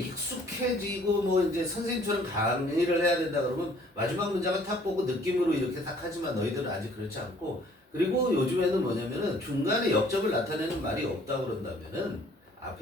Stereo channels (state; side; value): normal; both; correlation 0.58